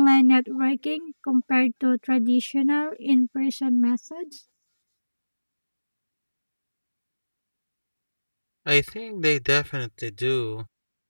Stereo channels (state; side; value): inverted; both; correlation -1.00